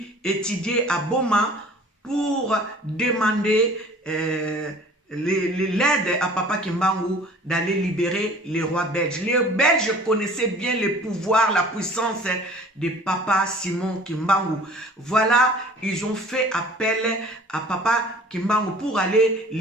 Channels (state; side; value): normal; both; correlation 0.48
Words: étudiait à Boma, pour demander l'aide à Papa Kimbangu d'aller libérer les rois belges. Les Belges connaissaient bien le pouvoir, la puissance de Papa Simon Kimbangu. Voilà, ils ont fait appel à Papa Kimbangu pour aller